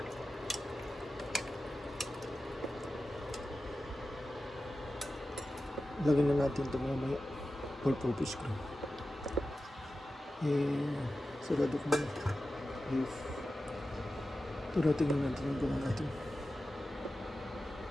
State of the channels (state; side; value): normal; both; correlation 0.93